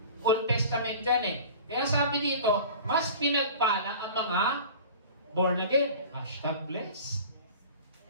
Old Testament dyan eh. Kaya sabi dito, mas pinagpala ang mga born again. #bless.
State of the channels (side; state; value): both; inverted; correlation -0.40